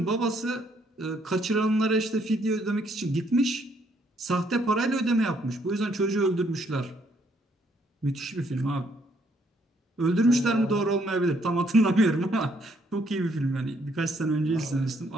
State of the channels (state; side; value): normal; both; correlation 0.69